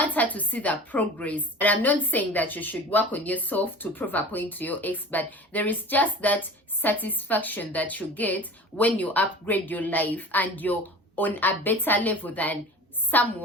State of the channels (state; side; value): normal; both; correlation 0.37